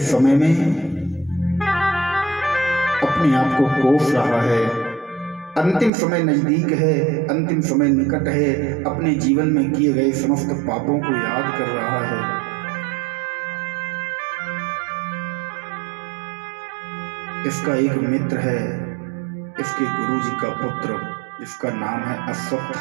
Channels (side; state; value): left; drops out; at 5.9 s